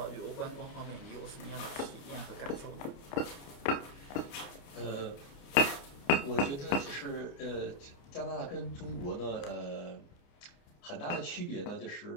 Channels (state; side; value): late; right; 29 ms